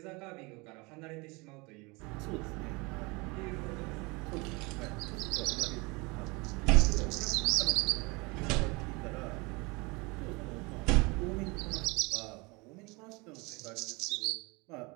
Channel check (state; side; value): quieter; left; 26.5 dB